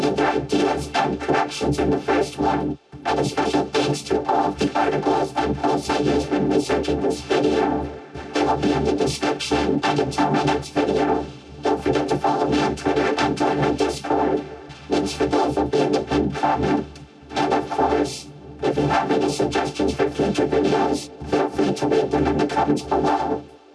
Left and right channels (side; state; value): both; identical; correlation 1.00